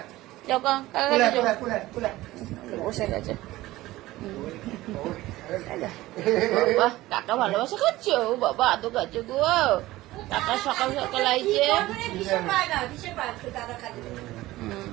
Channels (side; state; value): left; quieter; 17.4 dB